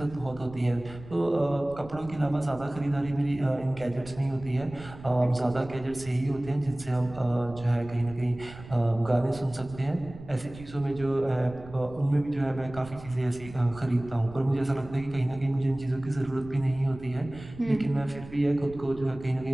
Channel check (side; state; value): right; noise; rumble, 16 dB below the sound